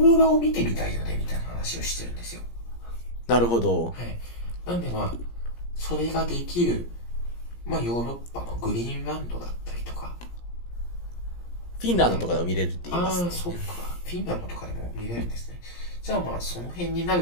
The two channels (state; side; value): late; right; 17 ms